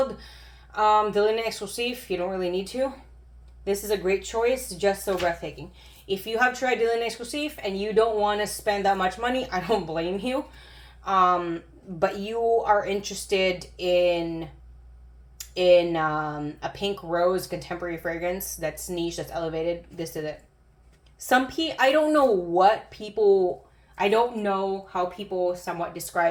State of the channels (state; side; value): identical; both; correlation 1.00